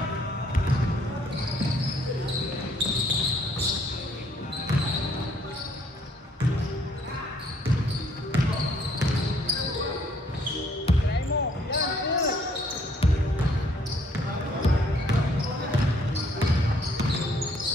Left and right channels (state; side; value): normal; both; correlation 0.64